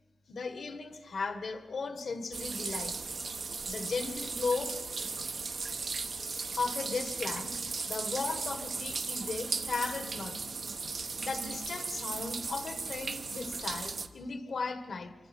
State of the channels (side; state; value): both; normal; correlation 0.88